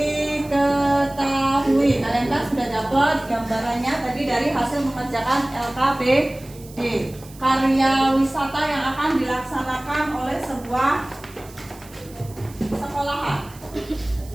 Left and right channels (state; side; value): noise; right; hiss, 22 dB below the sound